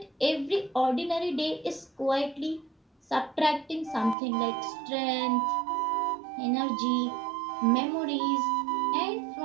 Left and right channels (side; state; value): left; drops out; at 4.2 s